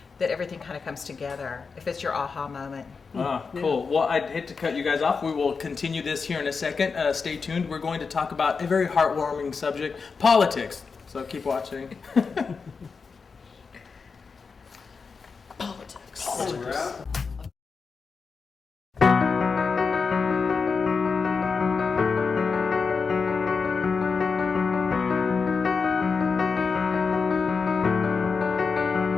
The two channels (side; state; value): right; quieter; 5.1 dB